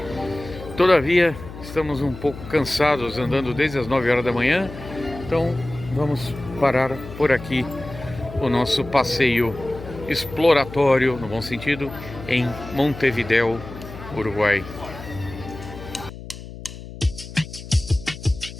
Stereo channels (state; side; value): noise; left; hum, 13 dB below the sound